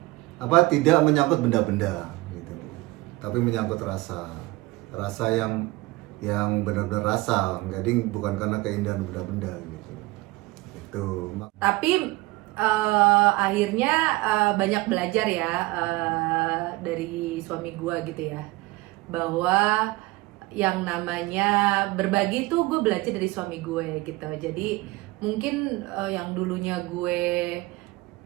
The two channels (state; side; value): quieter; left; 21.5 dB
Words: tidak menyangkut benda-benda gitu, tapi menyangkut rasa yang benar-benar rasa, jadi bukan karena keindahan benda-benda gitu. Itu. Tapi akhirnya banyak belajar ya dari suami gue gitu ya, bahwa yang namanya berbagi tuh gue belajar dari suami gue gitu. Jadi mungkin yang dulunya gue